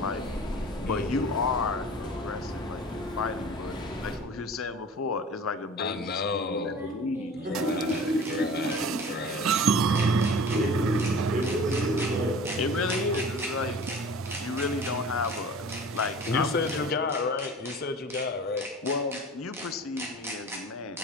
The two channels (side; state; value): both; normal; correlation 0.41